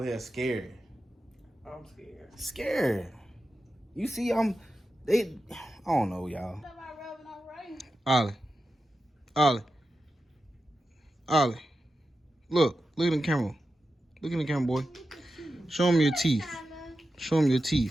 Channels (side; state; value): both; normal; correlation 0.91